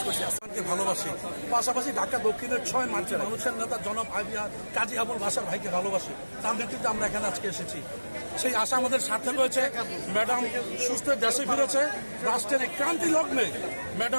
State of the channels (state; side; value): inverted; both; correlation -1.00